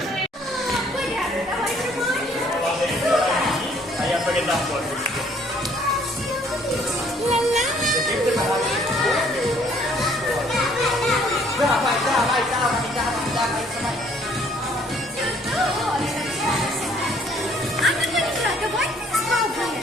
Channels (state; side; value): normal; both; correlation 0.61